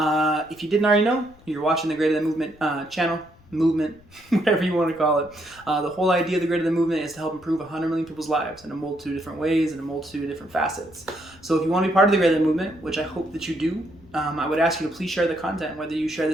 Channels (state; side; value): noise; left; rumble, 26 dB below the sound